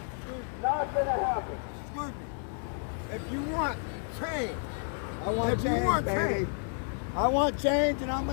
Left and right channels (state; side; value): silent; right; 57 dB below the other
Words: Not going to happen. Excuse me. If you want change, I want if you want baby. change, I want change, and I'm